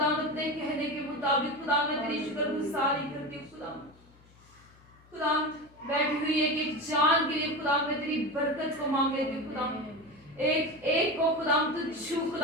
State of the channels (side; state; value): left; noise; hum, 27 dB below the sound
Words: अपने कहने के मुताबिक खुदाम मैं तेरी शुक्रगुजारी करती हूँ खुदाम बैठी हुई एक जान के लिए खुदाम मैं तेरी बरकत को मांग लेती हूँ खुदाम एक को खुदाम तू छू